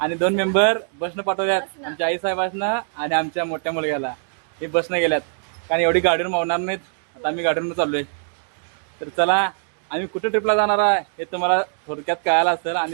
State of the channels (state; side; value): silent; left; digital silence